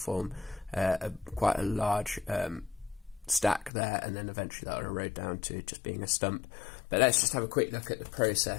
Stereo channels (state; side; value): drops out; right; at 3.7 s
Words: quite a large stack there, and then eventually that will erode down to just being a stump. But let's just have a quick look at the